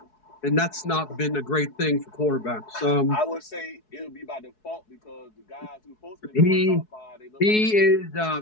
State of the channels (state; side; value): late; right; 4.7 ms